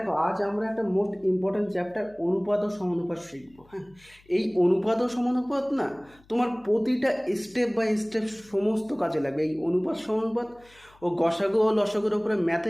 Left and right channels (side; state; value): left; noise; hum, 29 dB below the sound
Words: আজ আমরা একটা মোস্ট ইম্পর্ট্যান্ট চ্যাপ্টার অনুপাত ও সমানুপাত শিখবো। হ্যাঁ, এই অনুপাত ও সমানুপাত না তোমার প্রতিটা স্টেপ বাই স্টেপ সমস্ত কাজে লাগবে। এই অনুপাত সমানুপাত ও গসাগু ও লসাগুর ওপরে